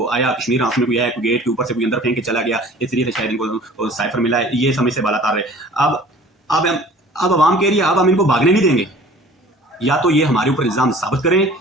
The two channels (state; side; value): normal; both; correlation 0.47